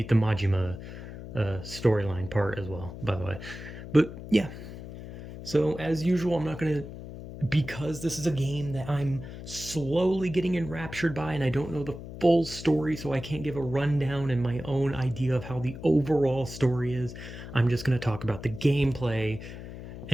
the Majima storyline part as well, by the way. But yeah, so, as usual, I'm not going to, because this is a game that I'm slowly getting enraptured by and I don't know the full story, so I can't give a rundown and my own idea of how the overall story is. I'm just going to talk about the gameplay.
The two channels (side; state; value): left; noise; hum, 11 dB below the sound